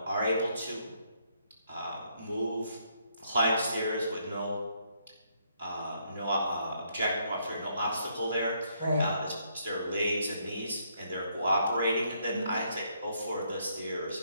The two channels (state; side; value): inverted; both; correlation -0.72